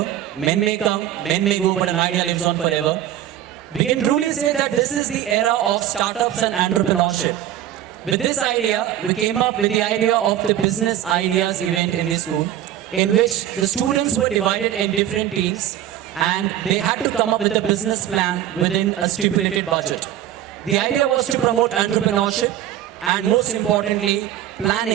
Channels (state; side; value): quieter; left; 11.9 dB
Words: Men may come, men may go, but an idea lives on forever. We can truly say that this is the era of startups and entrepreneurship. With this idea, we came up with the idea of the Business Ideas event in the school, in which the students were divided in different teams and they had to come up with a business plan within a stipulated budget. The idea was to promote entrepreneurship and, most importantly,